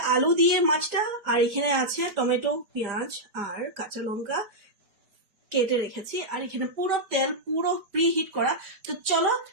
আলু দিয়ে মাছটা, আর এখানে আছে টমেটো, পেঁয়াজ আর কাঁচা লঙ্কা কেটে রেখেছি, আর এখানে পুরো তেল পুরো প্রি হিট করা। তো চলো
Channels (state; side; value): late; left; 4.9 ms